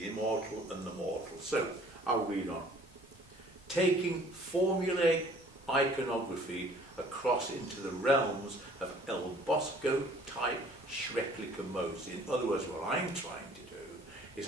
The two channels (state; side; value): normal; both; correlation 0.54